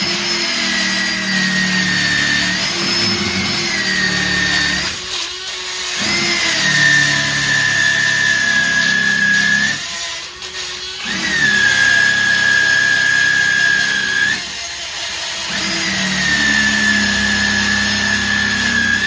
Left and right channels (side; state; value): both; identical; correlation 1.00